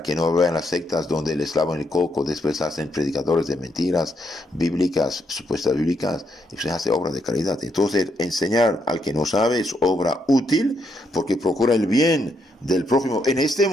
que no vean las sectas donde les lavan el coco, después hacen predicadores de mentiras bíblicas, supuestas bíblicas, y se hace obra de caridad. Entonces, enseñar al que no sabe es obra útil porque procura el bien del prójimo en este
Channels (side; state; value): both; normal; correlation 0.77